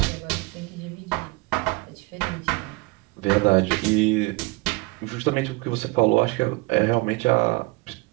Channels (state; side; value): quieter; left; 24.9 dB